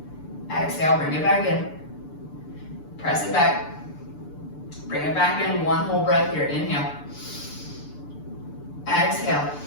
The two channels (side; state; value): right; late; 6.8 ms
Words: Exhale, bring it back in. Press it back. Bring it back in, one whole breath here. Inhale. Exhale.